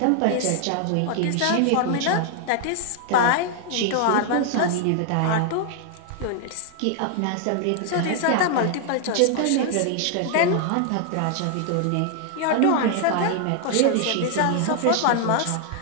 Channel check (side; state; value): both; different; correlation 0.00